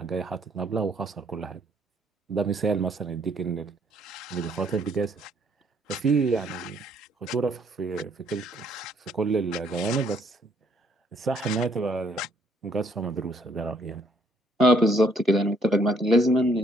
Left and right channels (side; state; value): both; normal; correlation 0.66